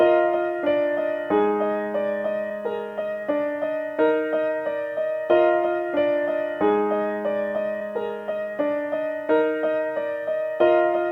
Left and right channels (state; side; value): identical; both; correlation 1.00